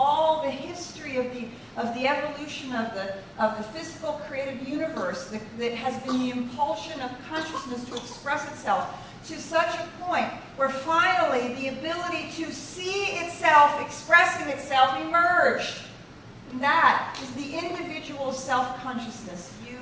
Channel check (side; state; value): both; identical; correlation 1.00